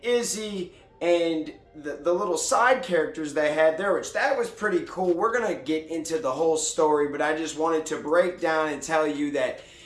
Izzy and the little side characters they had there, which that was pretty cool. We're gonna get into the whole story, but I just wanted to break down and tell you that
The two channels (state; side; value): identical; both; correlation 1.00